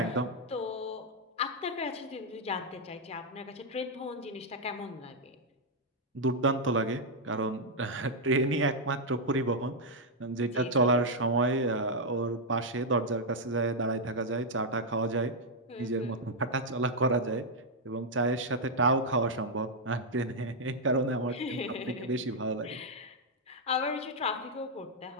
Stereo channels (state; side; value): normal; both; correlation -0.02